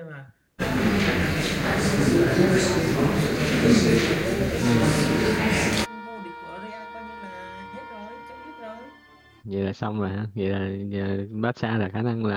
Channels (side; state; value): both; identical; correlation 1.00